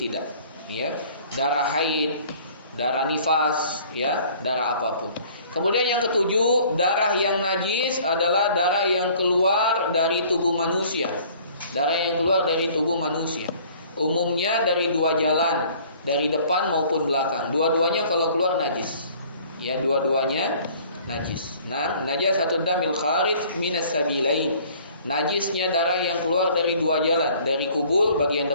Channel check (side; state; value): both; inverted; correlation -0.53